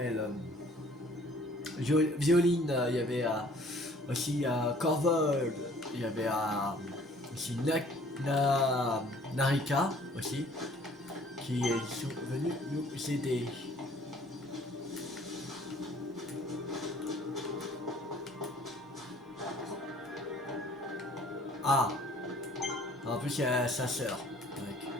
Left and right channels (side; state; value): both; normal; correlation 0.55